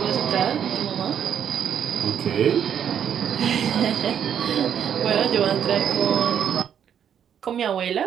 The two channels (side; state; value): left; quieter; 8.7 dB